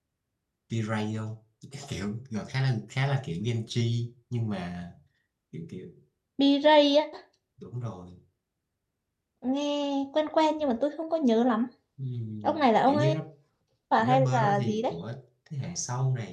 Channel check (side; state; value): both; identical; correlation 1.00